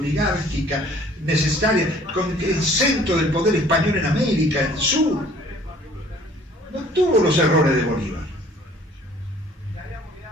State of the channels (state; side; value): normal; both; correlation 0.54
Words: necesaria, con el centro del poder español en América, en el sur. No tuvo los errores de Bolívar.